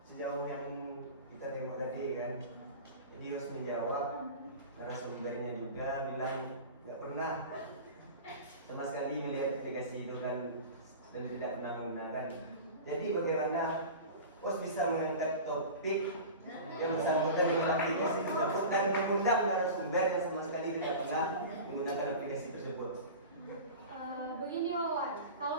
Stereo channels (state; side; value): inverted; both; correlation -0.33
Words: sejauh yang kita tengok tadi kan, jadi harus menjawab. Narasumbernya juga bilang nggak pernah sama sekali melihat aplikasi itu kan, dan tidak pernah menggunakan. Jadi bagaimana Pos bisa mengangkat topik yang bersangkutan dengan aplikasi tersebut dan mengundang narasumber yang sama sekali tidak pernah menggunakan aplikasi tersebut? Begini Wawan,